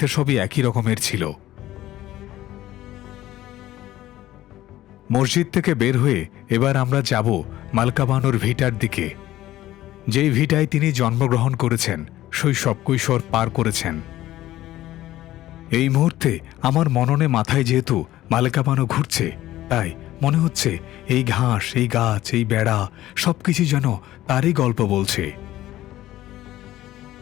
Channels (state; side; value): quieter; right; 14.8 dB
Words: সবই একই রকমের ছিল। মসজিদ থেকে বের হয়ে এবার আমরা যাব মালকা বানুর ভিটার দিকে, যেই ভিটায় তিনি জন্মগ্রহণ করেছেন, শৈশব কৈশোর পার করেছেন। এই মুহূর্তে আমার মননে মাথায় যেহেতু মালকা বানু ঘুরছে, তাই মনে হচ্ছে এই ঘাস, এই গাছ, এই বেড়া সবকিছু যেন তারই গল্প বলছে।